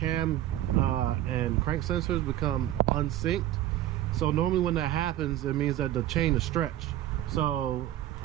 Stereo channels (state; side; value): quieter; left; 13.5 dB